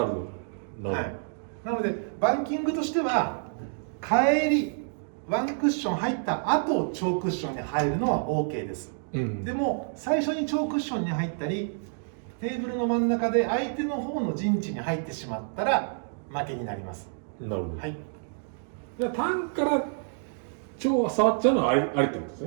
るほど。はい。なのでバンキングとしては帰りワンクッション入った後超クッションに入るのは OK です、でも最初に超クッションに入ったりテーブルの真ん中で相手の方の陣地に入ってしまったら負けになります。なるほど。はい。じゃあ単から超は触っちゃうのはありってことです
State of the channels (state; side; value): silent; left; digital silence